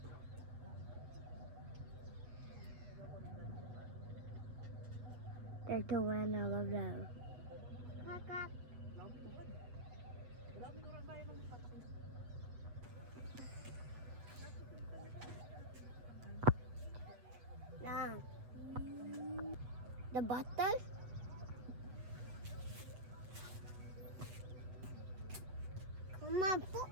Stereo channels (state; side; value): late; left; 8.1 ms